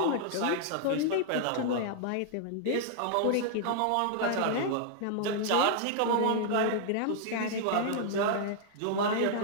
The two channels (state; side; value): different; both; correlation -0.01